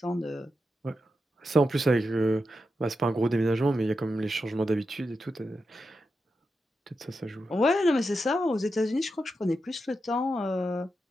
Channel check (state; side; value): normal; both; correlation 0.88